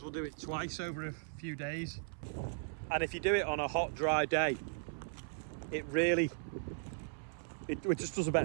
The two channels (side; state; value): left; silent; 53 dB below the other